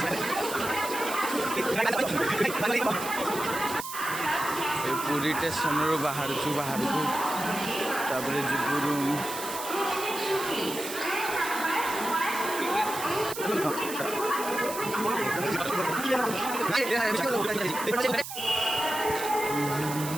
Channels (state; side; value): noise; right; hiss, 9 dB below the sound